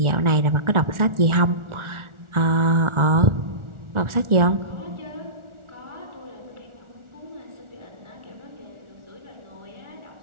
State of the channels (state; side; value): late; left; 1.4 ms